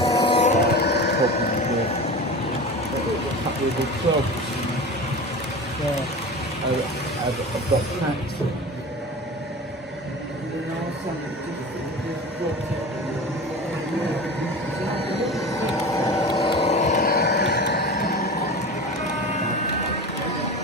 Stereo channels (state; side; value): normal; both; correlation 0.32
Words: With the clubs. Yeah, I've got tracks.